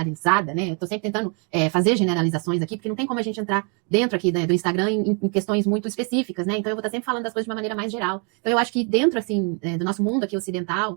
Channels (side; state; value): left; quieter; 37.2 dB